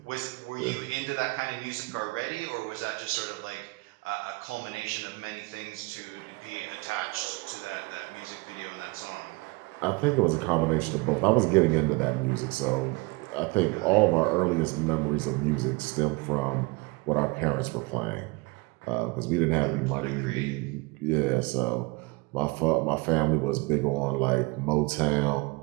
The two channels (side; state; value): left; quieter; 25.9 dB